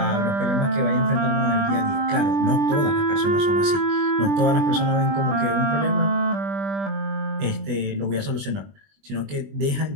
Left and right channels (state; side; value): late; left; 20 ms